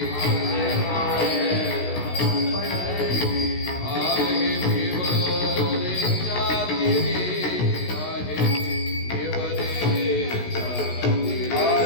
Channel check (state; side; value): late; right; 16 ms